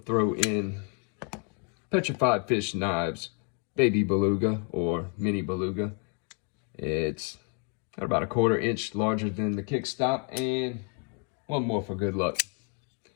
in Petrified Fish Knives Baby Beluga or Mini Beluga. It's about a 1/4 inch larger than the KICKSTOP, and one more for good luck.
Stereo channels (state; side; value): quieter; right; 38.9 dB